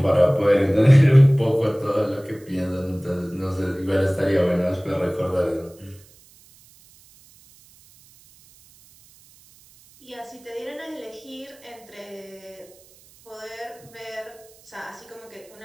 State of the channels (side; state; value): right; noise; hiss, 27 dB below the sound